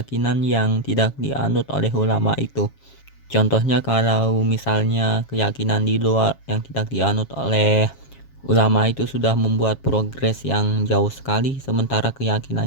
yang tidak dianut oleh ulama itu. Contohnya kalau misalnya keyakinan di luar yang tidak dianut oleh ulama itu sudah membuat progres yang jauh sekali, sementara keyakinan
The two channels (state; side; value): late; right; 7.3 ms